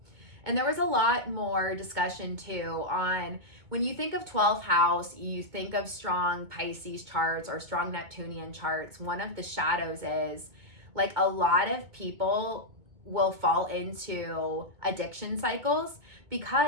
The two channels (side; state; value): left; late; 2.2 ms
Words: And there was a lot more discussion too on when you think of 12th house, you think of strong Pisces charts or strong Neptunian charts. One of the shadows is like a lot of people will fall into addiction cycles